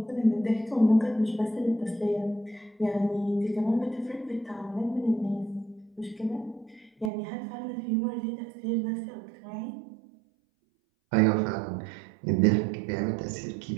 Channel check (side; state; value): left; drops out; at 7.1 s